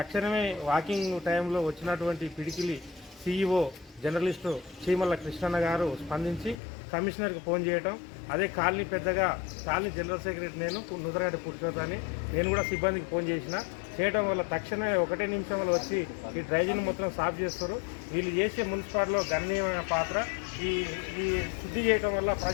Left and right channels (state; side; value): drops out; right; at 6.6 s